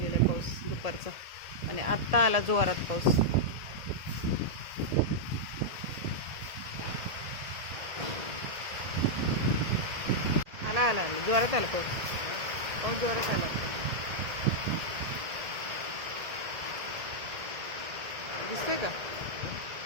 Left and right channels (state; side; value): late; left; 1.8 ms